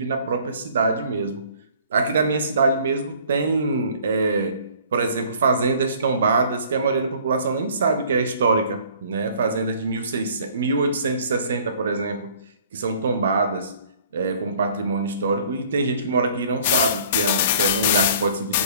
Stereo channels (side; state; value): both; inverted; correlation -0.54